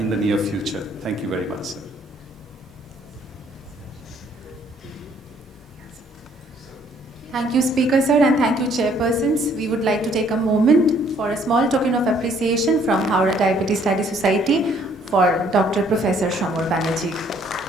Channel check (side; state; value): both; normal; correlation 0.63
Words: the near future. Thank you very much, sir. Thank you, Speaker Sir, and thank you, Chairpersons. We would like to take a moment for a small token of appreciation from Howrah Diabetes Study Society for Dr. Professor Samar Banerjee.